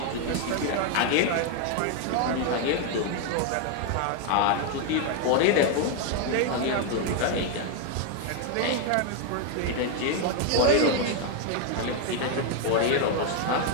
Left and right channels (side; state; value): both; different; correlation 0.01